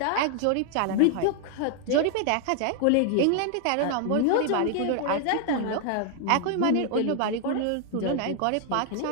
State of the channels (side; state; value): both; different; correlation 0.00